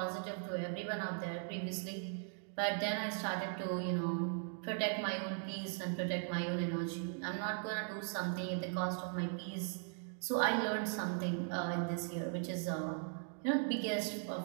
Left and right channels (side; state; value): left; silent; 52 dB below the other